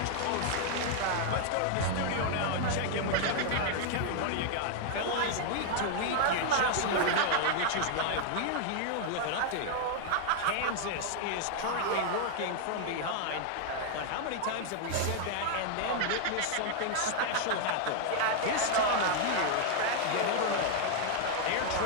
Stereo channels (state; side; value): different; both; correlation 0.00